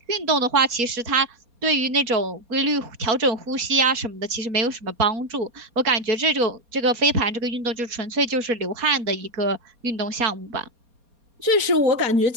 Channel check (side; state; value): left; late; 4.2 ms